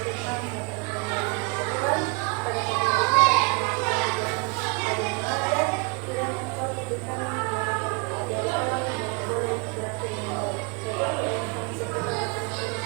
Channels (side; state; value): left; quieter; 31.2 dB